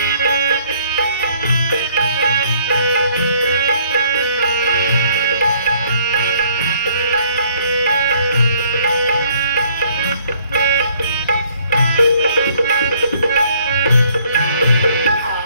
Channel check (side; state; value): both; inverted; correlation -0.61